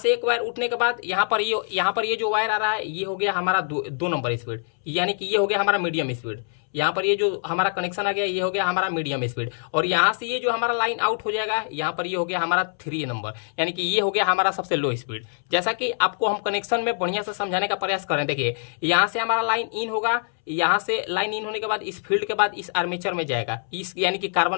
एक वायर उठने के बाद यहां पर ये जो वायर आ रहा है ये हो गया हमारा 2 नंबर स्पीड, यानी कि ये हो गया हमारा मीडियम स्पीड। यहाँ पर ये जो हमारा कनेक्शन आ गया ये हो गया हमारा मीडियम स्पीड। और यहाँ से ये जो हमारा लाइन आउट हो जाएगा, यहाँ पर ये हो गया हमारा 3 नंबर, यानी कि ये हो गया हमारा सबसे लो स्पीड। जैसा कि आपको हम कनेक्शन में बढ़िया से समझाने का प्रयास करें, देखिए यहाँ से हमारा लाइन इन होगा, यहाँ से लाइन इन होने के बाद इस फील्ड के बाद इस आर्मेचर में जाएगा, इस यानी कि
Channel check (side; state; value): right; silent; 62 dB below the other